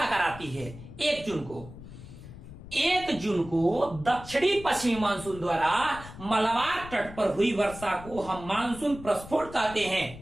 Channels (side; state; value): left; noise; rumble, 15 dB below the sound